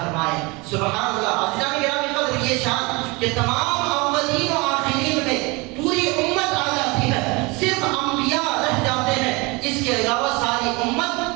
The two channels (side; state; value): left; quieter; 26.0 dB